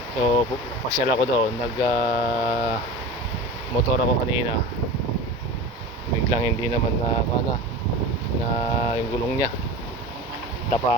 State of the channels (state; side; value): normal; both; correlation 0.32